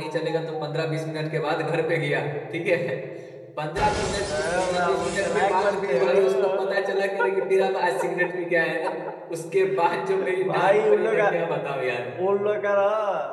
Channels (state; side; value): identical; both; correlation 1.00